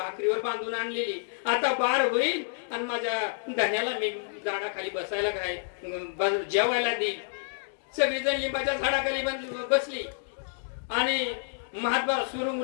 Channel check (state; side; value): silent; right; digital silence